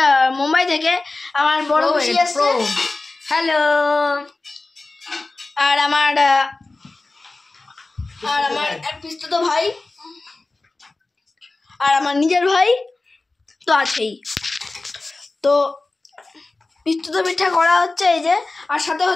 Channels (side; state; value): right; quieter; 3.3 dB